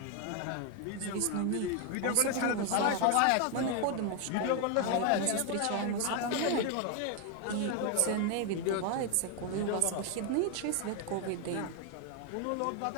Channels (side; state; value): both; different; correlation 0.01